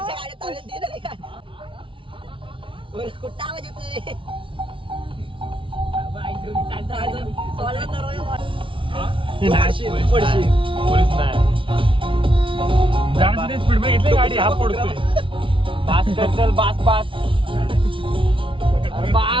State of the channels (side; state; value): left; late; 0.25 ms